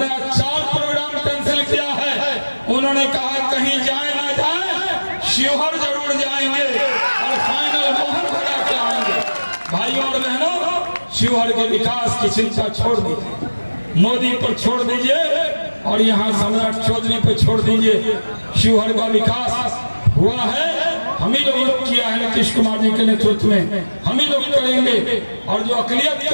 आज 4 प्रोग्राम कैंसिल किया है। उन्होंने कहा कहीं जाए ना जाए, शिवहर जरूर जाएंगे और फाइनल मोहर बना के आएंगे। भाइयों और बहनों, शिवहर के विकास की चिंता छोड़ दीजिए, मोदी पर छोड़ दीजिए और यहाँ सम्राट चौधरी पे छोड़ दीजिए। शिवहर का विकास हुआ है, हम ही लोगों ने किया है, नीतीश कुमार जी के नेतृत्व में हम ही लोग करेंगे। और जो अकलियत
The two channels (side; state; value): both; inverted; correlation -1.00